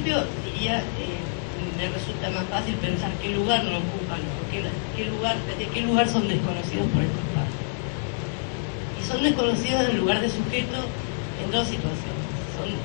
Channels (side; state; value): right; silent; digital silence